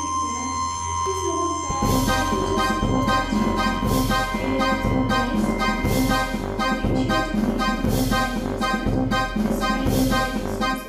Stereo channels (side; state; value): both; identical; correlation 1.00